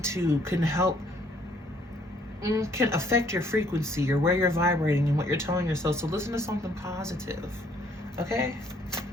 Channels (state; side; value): normal; both; correlation 0.64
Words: can affect your frequency or where you're vibrating and what you're telling yourself. So listen to something positive, okay?